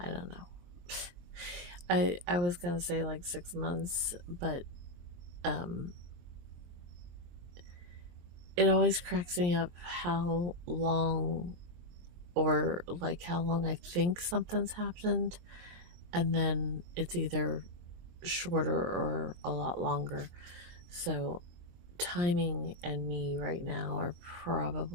don't know. I was gonna say like 6 months, but it always cracks me up how long, or like how long I think something's happened, and then it's either shorter or a lot longer. So timing and me right now are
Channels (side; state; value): left; late; 23 ms